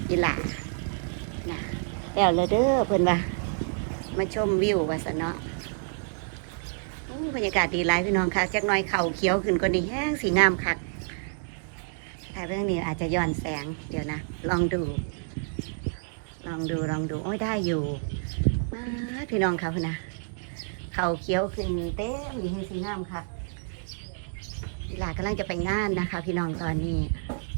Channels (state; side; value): silent; left; digital silence